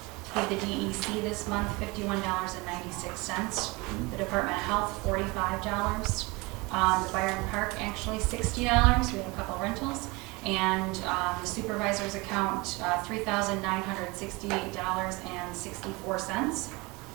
paid the DEC this month $51.96. The Department of Health, $45. The Byron Park, actually $60. We have a couple rentals. And the supervisor's account, $3,968.64.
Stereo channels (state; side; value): quieter; left; 25.1 dB